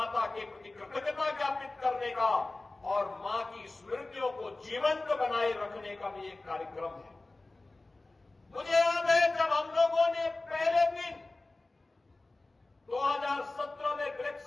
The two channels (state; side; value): quieter; right; 3.1 dB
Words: के प्रति कृतज्ञता ज्ञापित करने का और मां की स्मृतियों को जीवंत बनाए रखने का भी एक कार्यक्रम है। मुझे याद है जब हम लोगों ने पहले दिन 2017 में